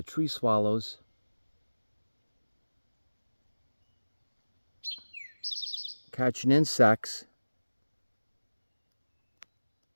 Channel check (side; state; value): both; inverted; correlation -1.00